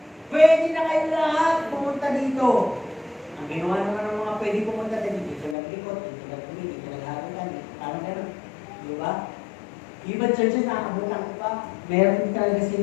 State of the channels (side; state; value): right; drops out; at 5.6 s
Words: Pwede na kayo lahat pumunta dito. Ang ginawa naman ng mga pwede pumunta dito naglikot, dito nagpili, dito nagharutan, parang gano'n. Di ba? Ibang churches nakabutan ko pa. Meron talaga